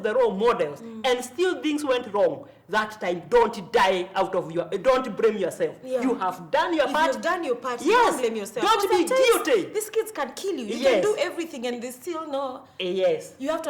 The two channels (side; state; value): both; identical; correlation 1.00